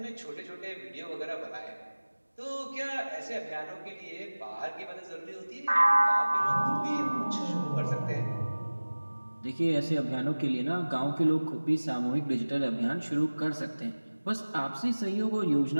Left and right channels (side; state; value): both; inverted; correlation -1.00